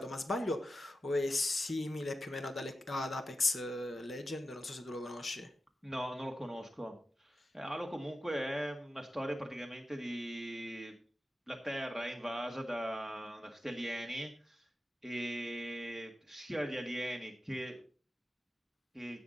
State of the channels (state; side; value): normal; both; correlation 0.91